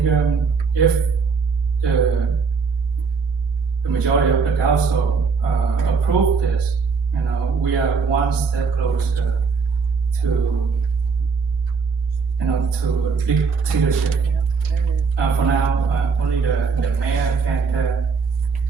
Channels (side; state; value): left; quieter; 5.2 dB